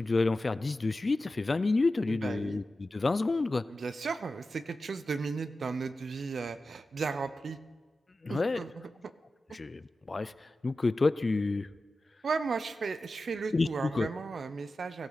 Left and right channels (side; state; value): both; normal; correlation 0.93